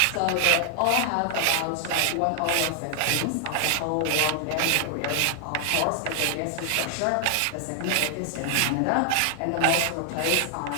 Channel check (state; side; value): different; both; correlation 0.00